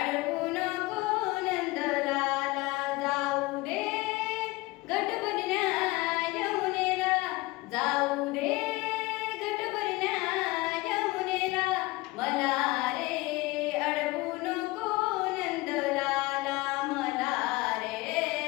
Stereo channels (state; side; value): quieter; right; 21.5 dB